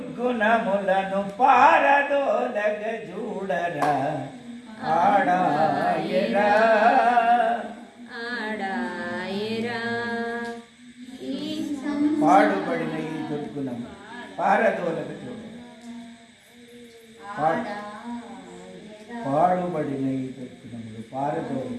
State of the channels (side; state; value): both; identical; correlation 1.00